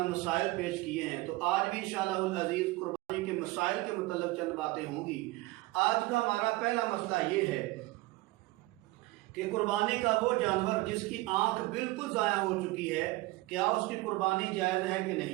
मसाइल पेश किए हैं, तो आज भी इंशाअल्लाहुल अज़ीज़ कुर्बानी के मसाइल के मुताल्लिक़ चंद बातें होंगी। आज का हमारा पहला मसला ये है कि कुर्बानी का वो जानवर जिसकी आंख बिल्कुल ज़ाया हो चुकी है, क्या उसकी कुर्बानी जायज़ है कि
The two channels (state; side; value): quieter; left; 20.7 dB